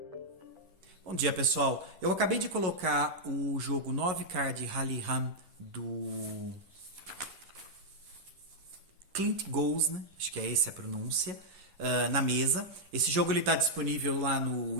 dia, pessoal. Eu acabei de colocar o jogo 9 Card Rally Run do Clint Goes, né? Acho que é essa a pronúncia, na mesa. Esse jogo está disponível lá no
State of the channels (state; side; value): late; left; 11 ms